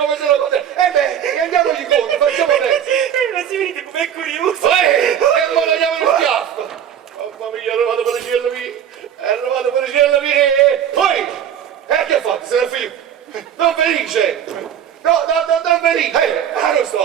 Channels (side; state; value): left; quieter; 9.3 dB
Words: se lo conosce. Beh, andiamogli incontro, facciamo presto. Ma si vedete com'è curioso! E ora andiamo in schiaffo. Mamma mia, è arrivato per il cielo mio. Poi, che fate? Se ne figlio? Don Felice! No, Don Felice! Non